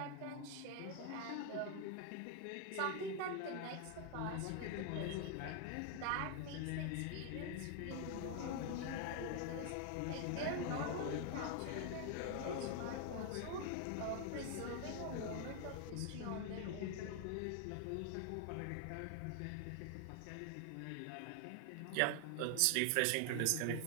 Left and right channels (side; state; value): both; different; correlation 0.00